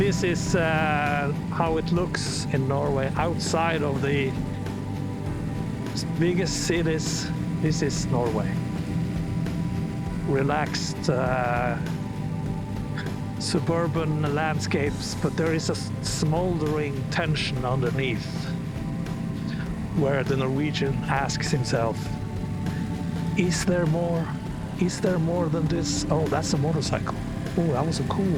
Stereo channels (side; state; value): both; identical; correlation 1.00